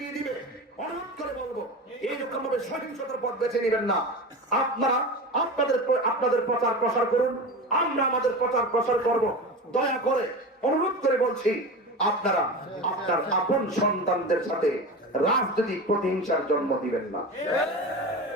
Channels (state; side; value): normal; both; correlation 0.27